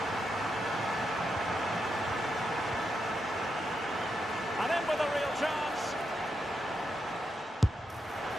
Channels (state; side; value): normal; both; correlation 0.84